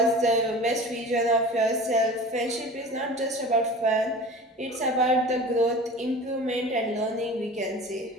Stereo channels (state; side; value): normal; both; correlation 0.38